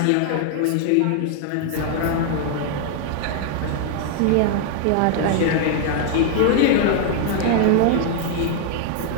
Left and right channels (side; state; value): both; different; correlation -0.01